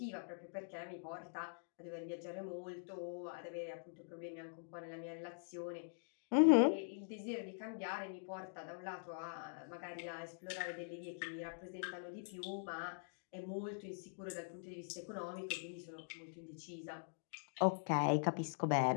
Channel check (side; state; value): right; silent; digital silence